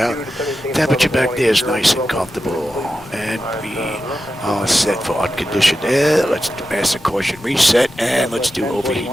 Temperature back there is nice and comfortable, and we are set for unconditioned air. Let's do master caution reset, and let's do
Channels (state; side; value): normal; both; correlation 0.91